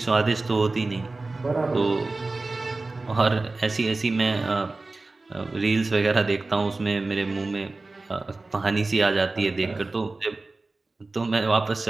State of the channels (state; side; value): quieter; left; 3.3 dB